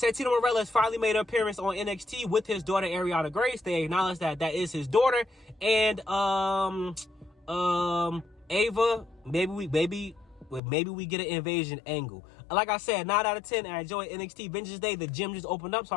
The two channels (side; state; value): right; drops out; at 10.6 s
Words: Marella has finally made an appearance on NXT with his daughter Ariana Grace. They acknowledge that that is his daughter. And Ava, maybe we get an invasion angle. Like I said, 9 out of 10. I enjoy NXT Vengeance Day. The gym just opened up, so